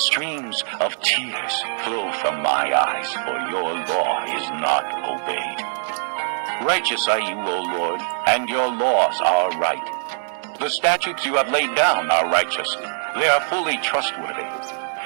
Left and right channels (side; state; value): left; silent; digital silence